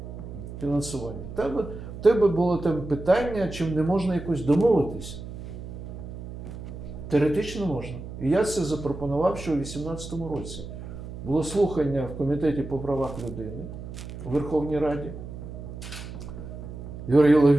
фінансування. Там тебе було там питання, чим не можна якось домовитися. Теоретично можна. І я це запропонував ще у 2018 році. Було слухання в Комітеті по правах людини у Верховній Раді. Юрій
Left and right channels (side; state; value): right; noise; hum, 10 dB below the sound